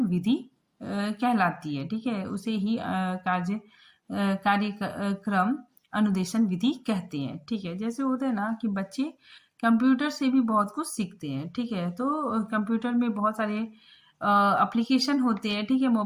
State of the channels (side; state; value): both; identical; correlation 1.00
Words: विधि कहलाती है। ठीक है, उसे ही कार्यक्रम अनुदेशन विधि कहते हैं। ठीक है, जैसे होता है ना कि बच्चे कंप्यूटर से भी बहुत कुछ सीखते हैं। ठीक है, तो कंप्यूटर में बहुत सारे एप्लीकेशन होते हैं। ठीक है,